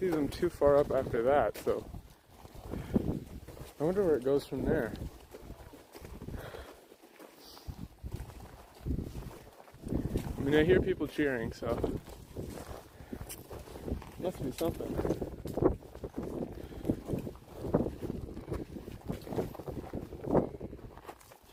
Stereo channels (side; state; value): both; identical; correlation 1.00